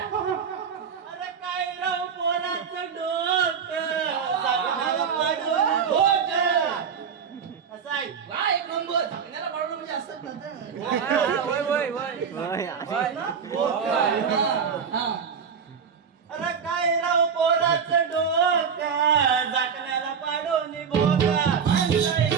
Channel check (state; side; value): quieter; left; 6.7 dB